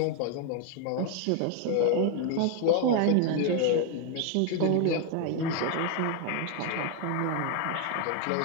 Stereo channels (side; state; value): both; different; correlation 0.01